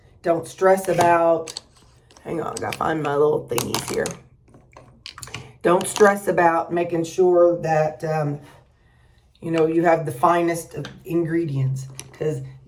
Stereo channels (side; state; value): both; identical; correlation 1.00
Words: Don't stress about, hang on, I gotta find my little thingies here. Don't stress about making sure that, you have the finest of ingredients, because